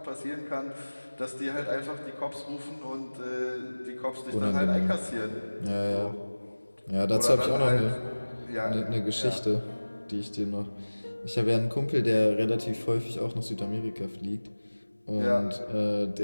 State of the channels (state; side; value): inverted; both; correlation -1.00